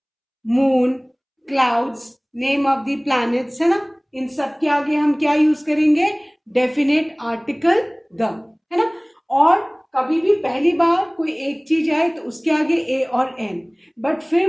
moon, clouds, name of the planets, है ना, इन सब के आगे हम क्या यूज करेंगे, डेफिनेट आर्टिकल द, है ना. और कभी भी पहली बार कोई एक चीज आए तो उसके आगे ए और एन, बट फिर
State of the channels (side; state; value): both; identical; correlation 1.00